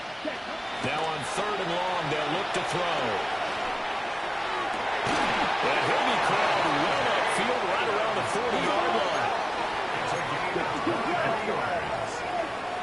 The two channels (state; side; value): identical; both; correlation 1.00